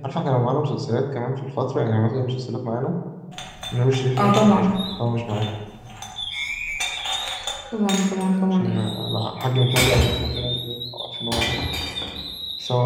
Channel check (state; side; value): identical; both; correlation 1.00